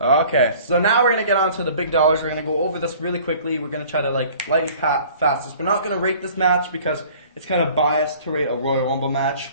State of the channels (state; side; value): inverted; both; correlation -0.50